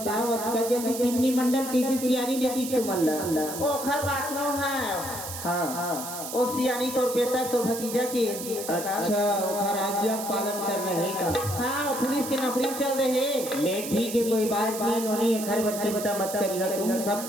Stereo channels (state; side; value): noise; right; hiss, 8 dB below the sound